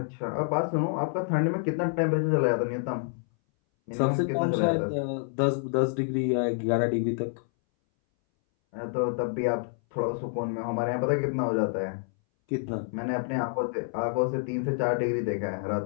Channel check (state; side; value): silent; right; 59 dB below the other